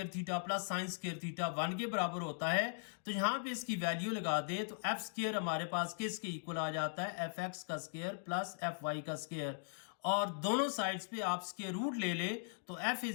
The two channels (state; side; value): silent; right; digital silence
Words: theta plus sine square theta 1 के बराबर होता है, तो यहां पे इसकी वैल्यू लगा दें तो एफ स्क्वायर हमारे पास किसके इक्वल आ जाता है, एफ एक्स का स्क्वायर प्लस एफ वाई का स्क्वायर, और दोनों साइड्स पे आप स्क्वायर रूट ले ले तो f